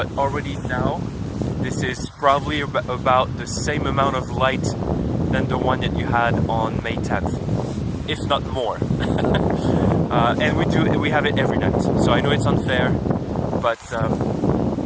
already now, this is probably about the same amount of light than the one that you had on May 10th, if not more. And we have it every night. So I know it's unfair, but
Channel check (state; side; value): identical; both; correlation 1.00